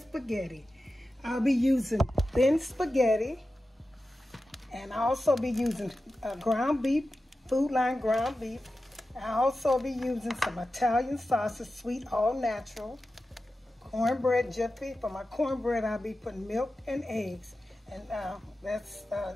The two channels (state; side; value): normal; both; correlation 0.93